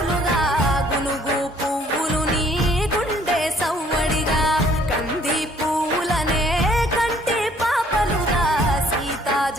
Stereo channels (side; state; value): both; normal; correlation 0.60